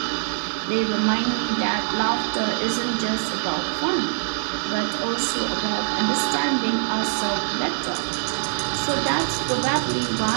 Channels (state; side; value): silent; left; digital silence